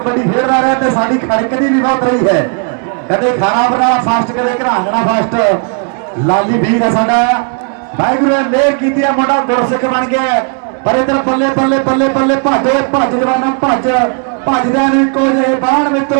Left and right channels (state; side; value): quieter; left; 38.9 dB